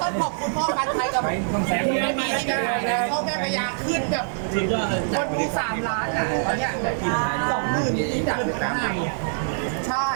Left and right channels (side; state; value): left; silent; digital silence